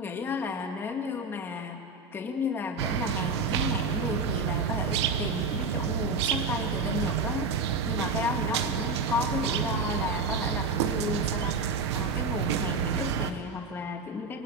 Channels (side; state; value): left; quieter; 3.4 dB